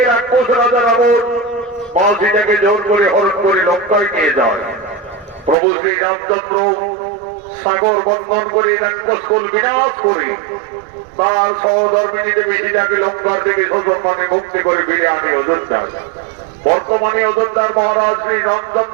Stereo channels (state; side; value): drops out; left; at 5.6 s